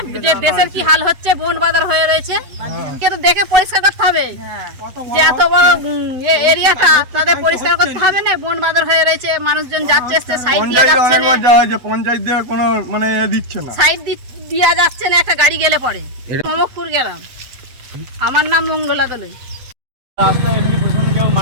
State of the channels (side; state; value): left; late; 8.1 ms